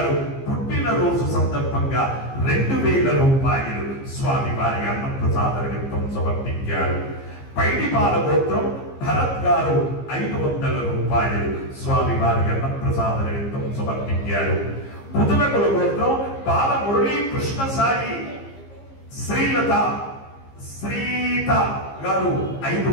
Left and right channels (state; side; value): late; right; 15 ms